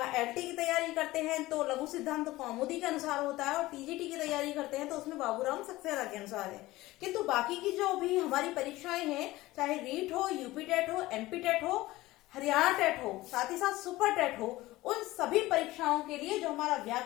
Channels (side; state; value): right; quieter; 18.3 dB